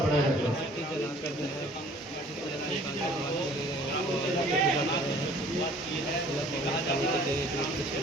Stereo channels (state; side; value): normal; both; correlation 0.53